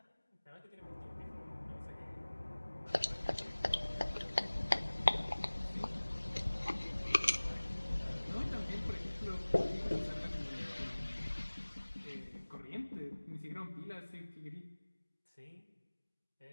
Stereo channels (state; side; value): inverted; both; correlation -1.00